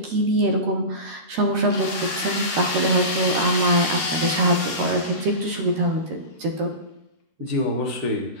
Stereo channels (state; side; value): late; left; 13 ms